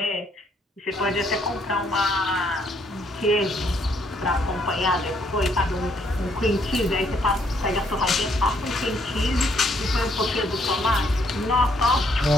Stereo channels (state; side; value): normal; both; correlation 0.69